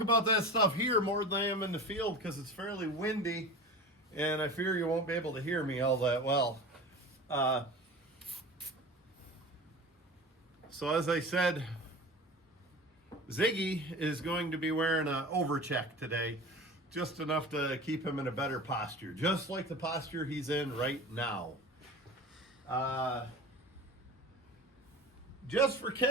that stuff here more than I am in the field because it's fairly windy and I fear you won't be able to hear me all that well. So as I said, Ziggy is going to be wearing an overcheck today, just enough to keep him in a better posture, just like the posture he's in right now. Just for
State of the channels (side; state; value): both; normal; correlation 0.34